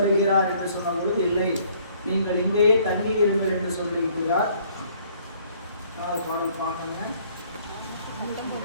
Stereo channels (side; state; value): both; inverted; correlation -0.61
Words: என்று சொன்ன பொழுது, இல்லை நீங்கள் இங்கேயே தங்கி இருங்கள் என்று சொல்லியிருக்கிறார். பாடல் பார்க்கணும்.